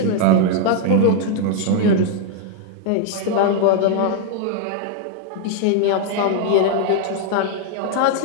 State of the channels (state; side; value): different; both; correlation 0.00